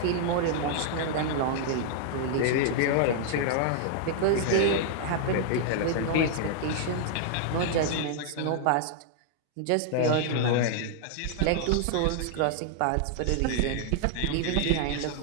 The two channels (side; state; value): both; different; correlation -0.01